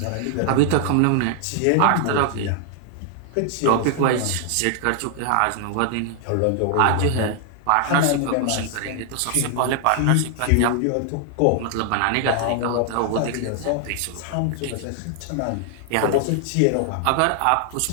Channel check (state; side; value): different; both; correlation 0.00